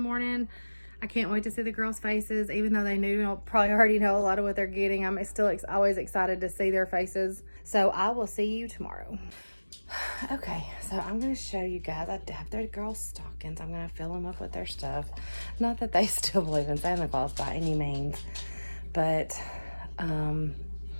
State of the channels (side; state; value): both; inverted; correlation -1.00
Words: I can't wait to see the girls' faces, even though they probably already know a lot of what they're getting. I'm still always excited to see their faces. So I will see you tomorrow. Okay, so I'm going to show you guys. I have their girls' stockings. I'm going to fill them up with their stuff. Not that they still believe in Santa Claus by any means, but I don't